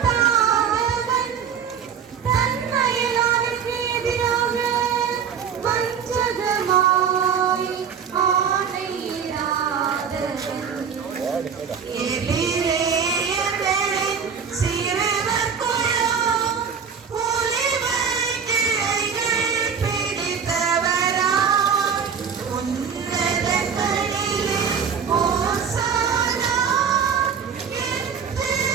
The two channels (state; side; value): quieter; left; 7.0 dB